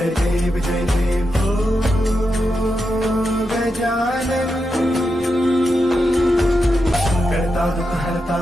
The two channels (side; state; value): both; normal; correlation 0.87